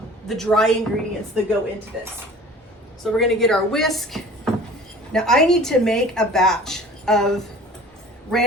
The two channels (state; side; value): normal; both; correlation 0.44